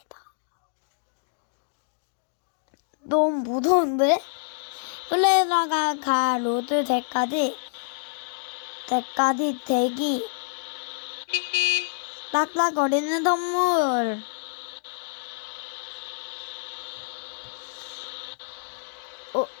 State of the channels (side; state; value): right; silent; digital silence